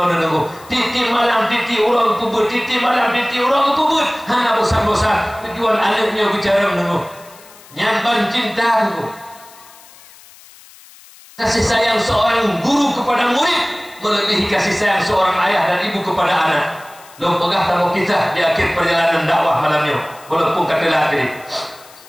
nabi titi malam titi urang puput titi malam titi urang puput hana bosan-bosan tujuan anaknya bicara nabi nyamban cinta tu. Kasih sayang seorang guru kepada murid melebihi kasih sayang seorang ayah dan ibu kepada anak. Lo pegah tamu kisah di akhir perjalanan dakwah malamnya. Walaupun kata lagi,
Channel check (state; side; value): noise; left; hiss, 23 dB below the sound